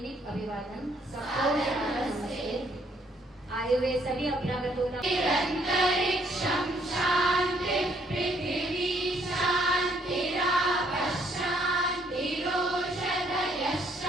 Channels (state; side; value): normal; both; correlation 0.67